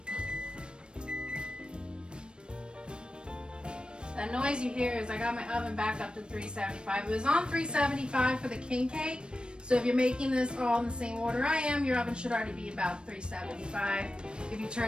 That noise you hear is I got my oven back up to 375. It was on 375 for the king cake. So if you're making this all in the same order I am, your oven should already be about 375. If you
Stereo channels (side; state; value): left; late; 0.054 ms